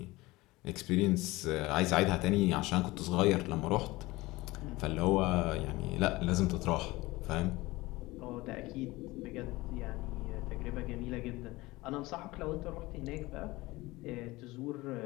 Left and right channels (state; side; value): quieter; right; 20.4 dB